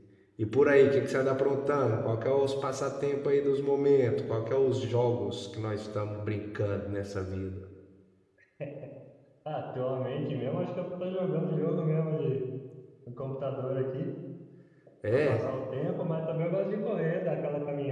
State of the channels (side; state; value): both; identical; correlation 1.00